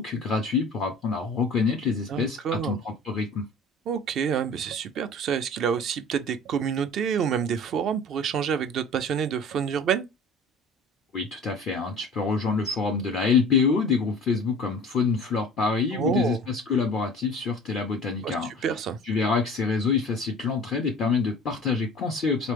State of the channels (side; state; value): both; normal; correlation 0.42